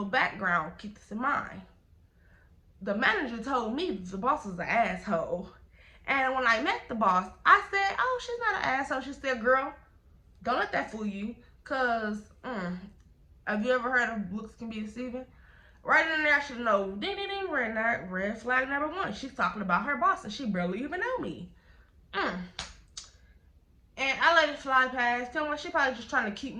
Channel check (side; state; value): both; identical; correlation 1.00